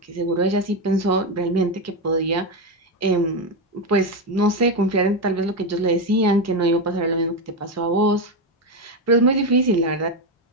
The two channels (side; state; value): both; normal; correlation 0.10